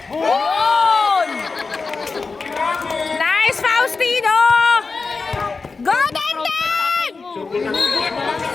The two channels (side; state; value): right; quieter; 4.3 dB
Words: Yun! Nice, Faustino! Go, Dandan! Subo na.